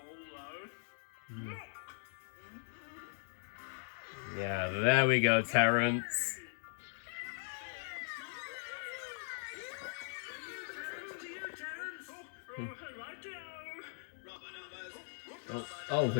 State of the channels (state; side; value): silent; right; digital silence